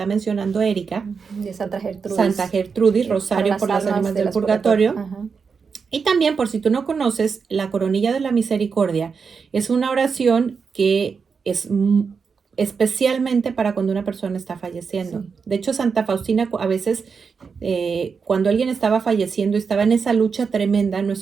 mencionando Erika, De Santa Santa Gertrudis, Gertrudis, para Rosario por las las almas ánimas de del las purgatorio. purgatorio. Ajá. Y también, por si tú no conoces, la coronilla de la misericordia es una oración que es especialmente para cuando una persona está falleciendo. Sí. De hecho, Santa Faustina a veces, cuando alguien estaba falleciendo, estaba en esa lucha tremenda,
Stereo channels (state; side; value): quieter; left; 5.6 dB